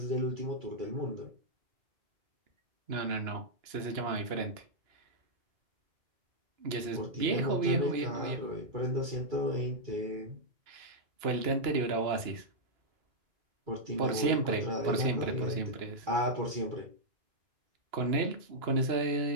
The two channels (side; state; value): left; late; 2.8 ms